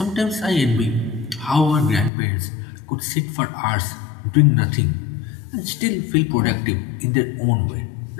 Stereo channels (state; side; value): drops out; right; at 2.1 s